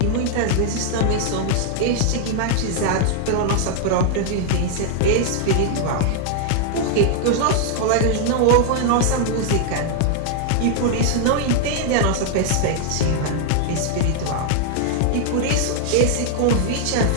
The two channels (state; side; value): different; both; correlation 0.00